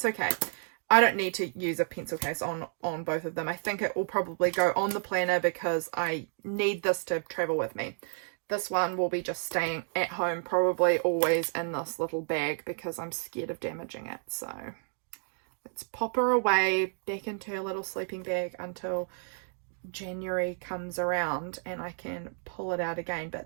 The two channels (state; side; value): silent; left; 57 dB below the other